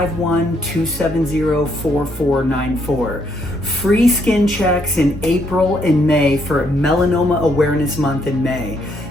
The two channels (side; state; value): both; normal; correlation 0.72